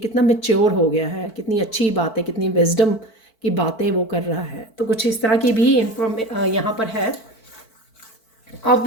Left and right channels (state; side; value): late; right; 4.5 ms